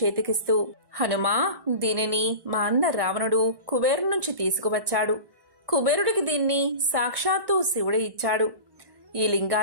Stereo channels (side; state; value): left; late; 1.1 ms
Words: హనుమా, దీనిని మా అన్న రావణుడు కుబేరు నుంచి తీసుకువచ్చాడు. కుబేరుడికి దీన్ని సాక్షాత్తు శివుడే ఇచ్చాడు. ఈ